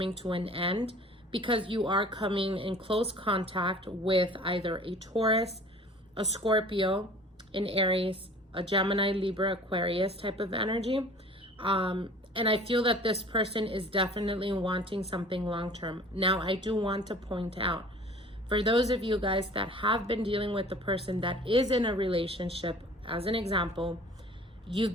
to an end, because you are coming in close contact with either a Taurus, a Scorpio, an Aries, a Gemini, Libra, Aquarius type of energy. And I feel that this person is definitely wanting something long-term. Now, I do want to point out, for those of you guys that have been dealing with the person that is in a relationship, as an example, you've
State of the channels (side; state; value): both; normal; correlation 0.46